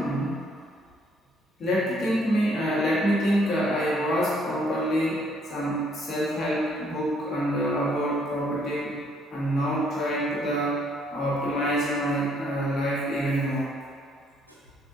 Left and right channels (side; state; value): both; normal; correlation 0.67